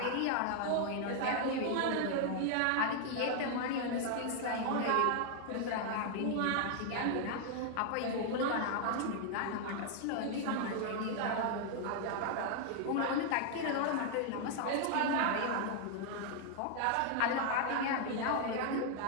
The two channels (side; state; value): both; different; correlation 0.00